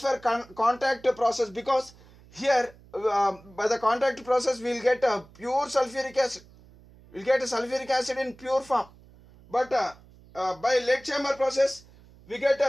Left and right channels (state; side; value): noise; right; hum, 24 dB below the sound